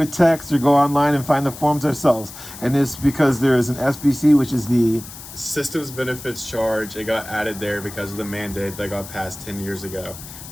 a text or go online and find the forms ourselves. And it's because there is an SBC, which is the Systems benefits charge. It got added there because of the mandate that got passed 10 years ago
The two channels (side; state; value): left; noise; hiss, 14 dB below the sound